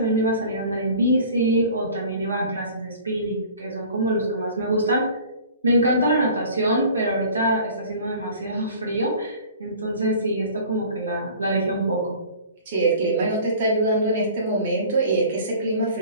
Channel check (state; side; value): inverted; both; correlation -0.45